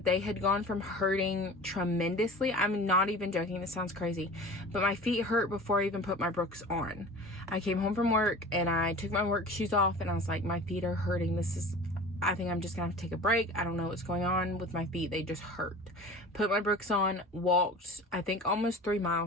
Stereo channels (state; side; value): normal; both; correlation 0.39